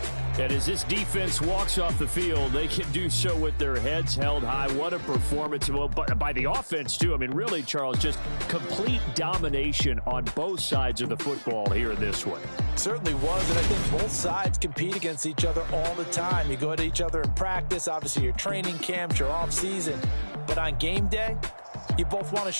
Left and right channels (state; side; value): inverted; both; correlation -1.00